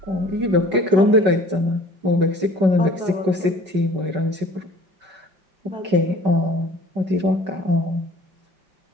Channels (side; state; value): left; late; 5.2 ms